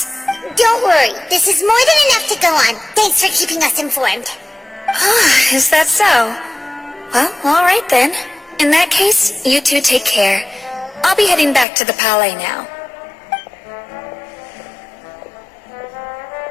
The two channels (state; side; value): drops out; right; at 11.7 s